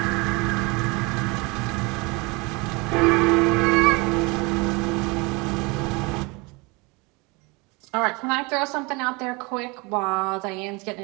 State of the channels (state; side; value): quieter; left; 26.0 dB